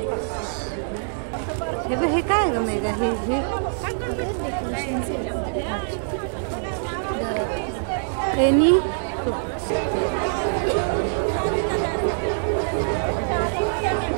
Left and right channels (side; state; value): left; silent; digital silence